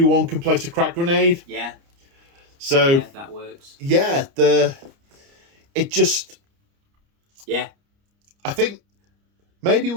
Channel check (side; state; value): left; late; 29 ms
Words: can place a crack grenade. Yeah. So that works. Yeah, it just. Yeah. I think maybe